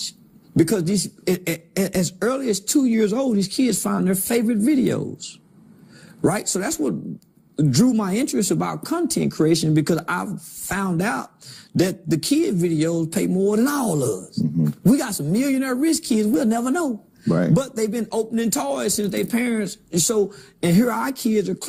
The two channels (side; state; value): both; identical; correlation 1.00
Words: Because as early as 2 years old, these kids find their favorite videos, right? So that's what drew my interest about content creation, because I've found out that the kid videos pay more than all of us. We got some millionaire rich kids we'll never know. Right. But they've been opening toys since their parents. And here our kids are